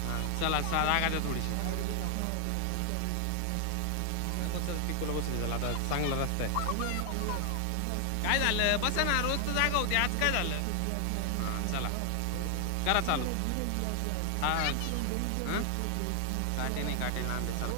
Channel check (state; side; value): different; both; correlation 0.00